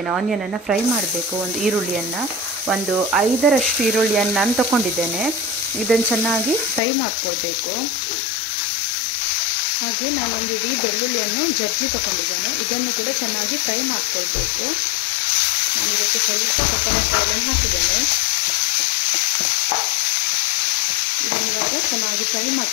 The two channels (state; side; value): drops out; right; at 6.8 s